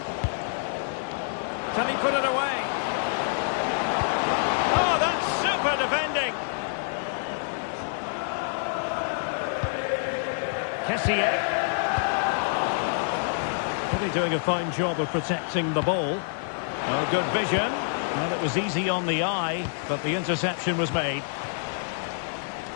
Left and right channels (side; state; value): right; silent; digital silence